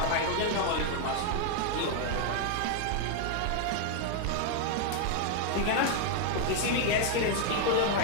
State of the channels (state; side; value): different; both; correlation 0.00